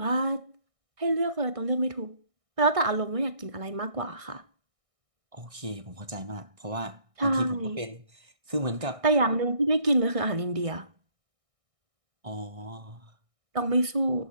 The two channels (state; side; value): late; left; 1.6 ms